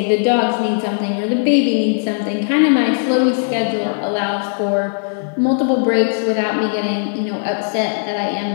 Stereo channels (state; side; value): silent; right; 56 dB below the other